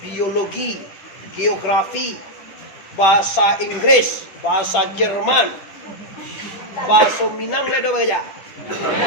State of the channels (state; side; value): late; right; 10 ms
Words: biologi, geografi, bahasa Inggris, bahasa Jerman, bahasa Minang ada baca.